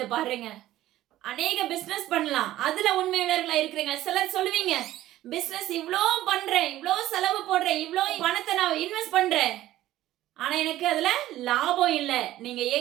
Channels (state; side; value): quieter; left; 14.5 dB